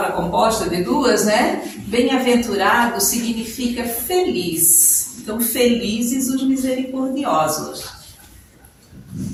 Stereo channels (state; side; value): identical; both; correlation 1.00